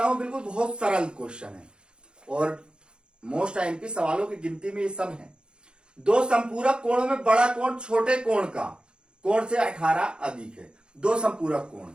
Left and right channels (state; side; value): late; left; 0.051 ms